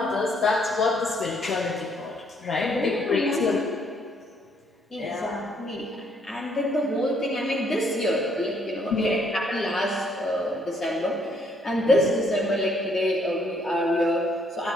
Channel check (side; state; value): both; normal; correlation 0.68